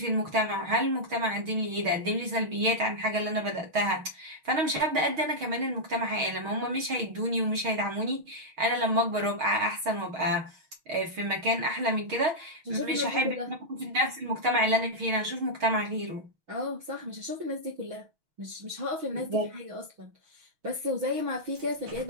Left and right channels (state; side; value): late; left; 6.4 ms